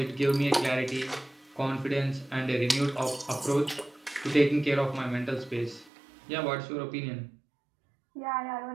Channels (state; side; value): drops out; left; at 5.9 s